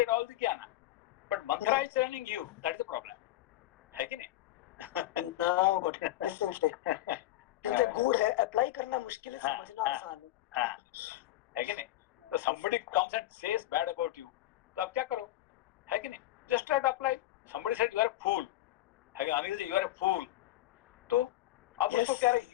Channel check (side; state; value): right; quieter; 15.2 dB